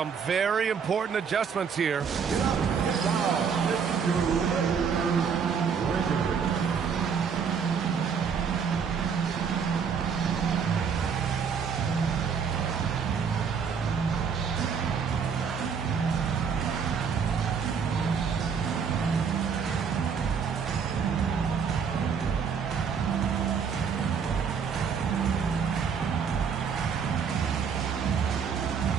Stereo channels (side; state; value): left; quieter; 6.5 dB